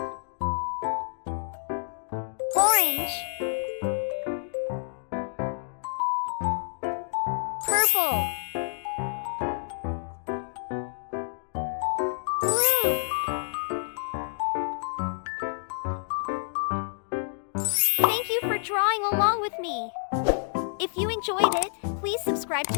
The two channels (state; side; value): silent; right; digital silence